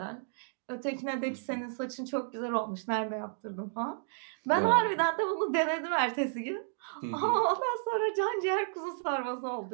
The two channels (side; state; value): left; silent; digital silence